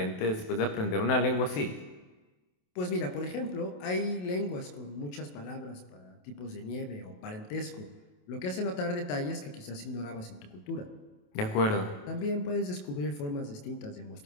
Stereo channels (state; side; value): late; right; 28 ms